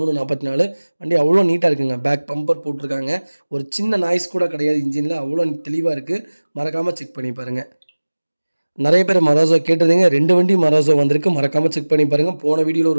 44. வண்டி அவ்வளோ நீட்டாக இருக்குங்க. பேக் பம்பர் போட்டிருக்காங்க. ஒரு சின்ன நாய்ஸ் கூட கிடையாது இன்ஜினில். அவ்வளோ தெளிவாக இருக்குது. மறக்காமல் செக் பண்ணி பாருங்கள். நிறைய பேர் மராசோ கேட்டிருந்தீங்க. 2 வண்டி மராசோ வந்திருக்கு. மறக்காமல் செக் பண்ணி பாருங்கள். போன வீடியோவில்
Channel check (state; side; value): inverted; both; correlation -1.00